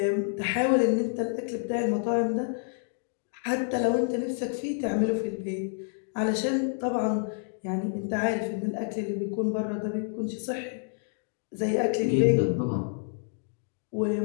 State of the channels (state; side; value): silent; right; digital silence